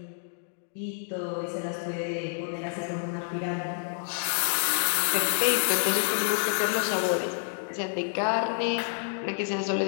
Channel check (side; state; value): right; silent; digital silence